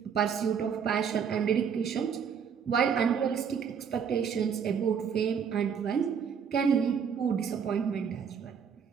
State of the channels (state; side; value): quieter; left; 7.1 dB